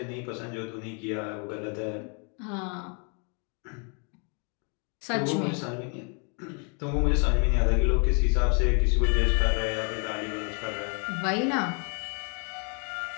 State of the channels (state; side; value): quieter; right; 37.7 dB